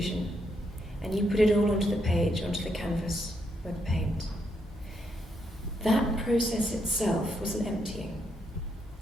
and you put it all onto the page, onto the canvas with paint. That process itself was an emptying.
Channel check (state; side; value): normal; both; correlation 0.78